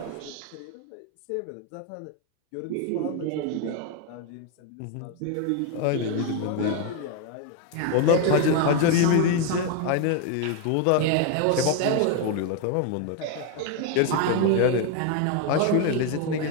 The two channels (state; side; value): different; both; correlation 0.01